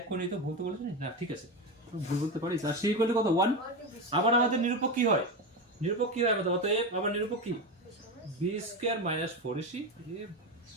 করে নিই তো, ভুল তো বলেছি না, ঠিক আছে, ভুল বলতে পারিস। আর c ইকুয়াল কত, 1। আবার আমাদের নিরূপক কি হয়, নিরূপক কি হয় আমাদের, অতএব আবার নিরূপক কি, b স্কয়ার মাইনাস 4ac।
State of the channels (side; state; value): both; normal; correlation 0.17